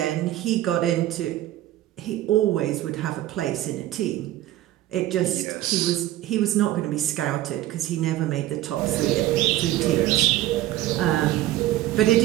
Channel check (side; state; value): left; quieter; 14.5 dB